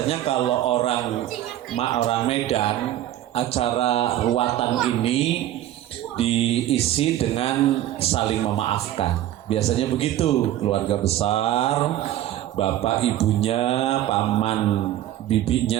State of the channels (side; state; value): left; quieter; 13.1 dB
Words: kalau orang Medan, acara ruatan ini diisi dengan saling memaafkan. Biasanya begitu, keluarga besar, bapak ibunya, paman